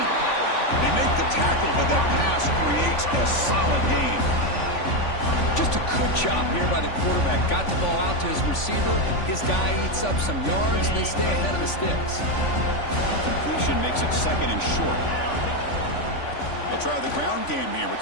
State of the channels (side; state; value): right; late; 3.5 ms